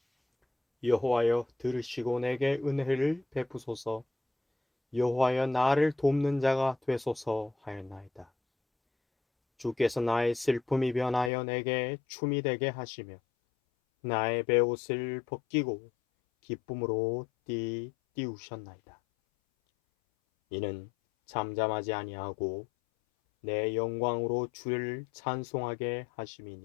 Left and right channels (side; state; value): right; drops out; at 11.3 s